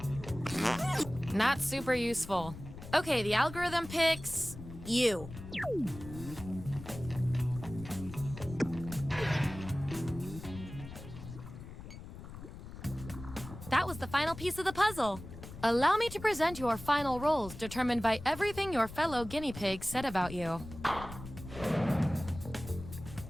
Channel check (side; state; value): left; noise; rumble, 13 dB below the sound